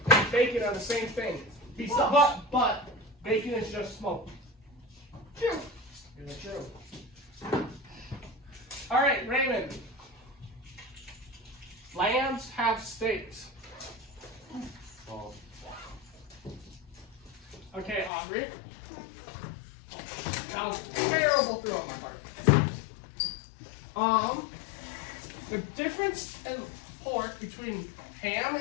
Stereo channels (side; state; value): right; drops out; at 18.1 s